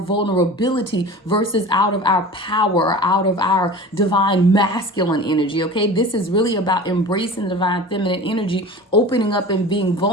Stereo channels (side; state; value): both; normal; correlation 0.36